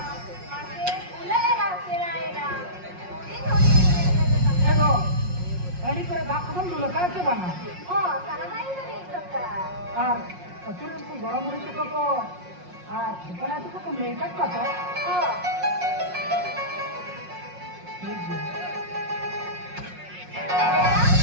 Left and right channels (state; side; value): late; left; 5.5 ms